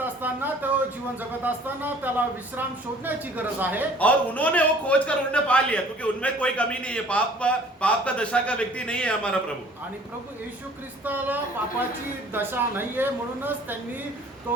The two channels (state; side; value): normal; both; correlation 0.52